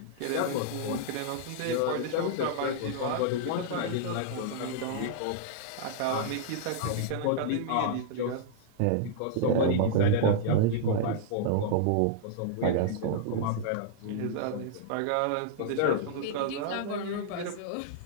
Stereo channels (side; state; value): both; different; correlation -0.01